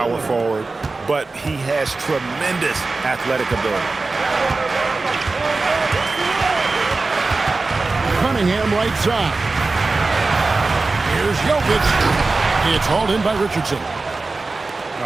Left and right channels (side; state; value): left; quieter; 3.6 dB